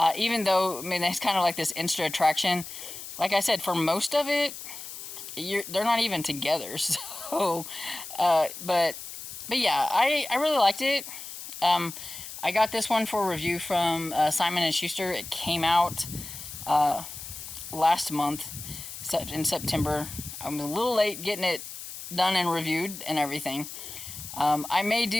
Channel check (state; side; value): noise; left; hiss, 11 dB below the sound